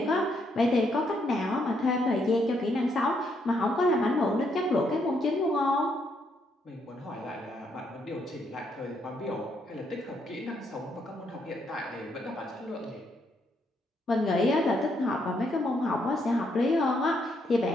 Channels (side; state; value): both; normal; correlation 0.75